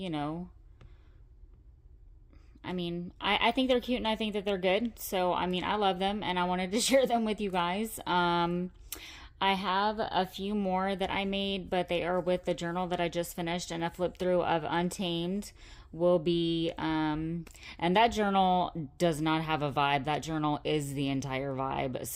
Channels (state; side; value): identical; both; correlation 1.00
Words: I think they're cute and I think that they're good. So, I love them and I wanted to share them with you guys. I have a few more that I made, but they are with the journal that I just finished, and a flip through of Untamed will be, and that journal does not have a vibe. That journal is the entire vibe.